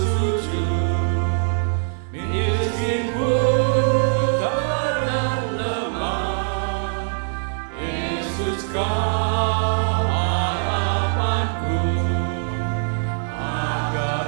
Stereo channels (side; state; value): left; silent; digital silence